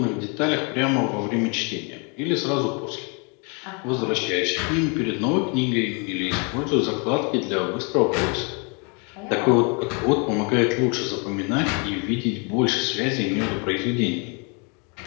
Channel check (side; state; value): right; quieter; 34.3 dB